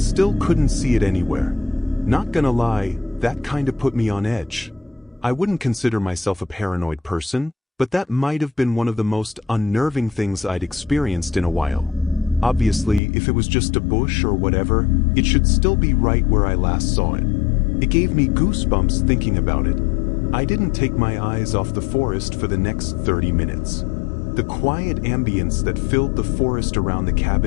still couldn't see it anywhere. Not gonna lie, that kinda put me on edge. I wouldn't consider myself a paranoid person, but that might have been one of the most unnerving things I'd experienced in a while. Obviously, if it was just a bush or whatever, it should still be right where I last saw it. It gave me goosebumps thinking about it. I didn't take my eyes off the forest for the next 30 minutes. The quiet ambience that filled the forest around the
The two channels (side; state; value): right; drops out; at 13.0 s